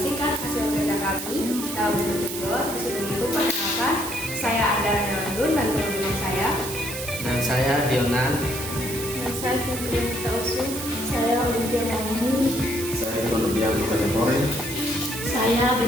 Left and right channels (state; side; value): noise; right; hiss, 8 dB below the sound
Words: hasil kerja kami dalam bentuk video. Disuruh itu perkenalkan, saya Andara Nelandun dan teman-teman saya. Dan saya Dionan. Dan saya Fitri Tausu. Saya Olimpia Mauni. Saya Ikonobian Kategori. Saya